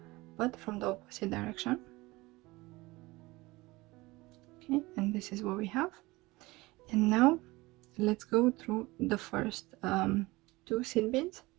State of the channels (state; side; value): quieter; left; 21.4 dB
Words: but from the opposite direction. Okay, and this is what we have. And now let's go through the first 2 seed beads.